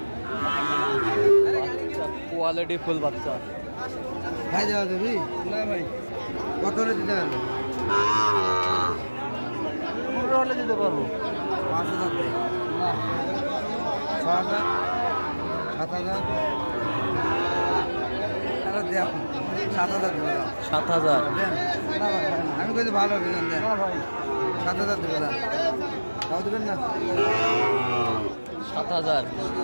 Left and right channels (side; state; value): both; inverted; correlation -1.00